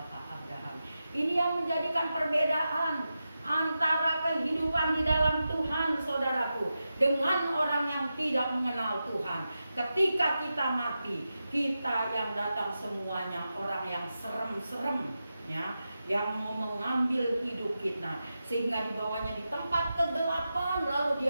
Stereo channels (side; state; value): both; inverted; correlation -0.91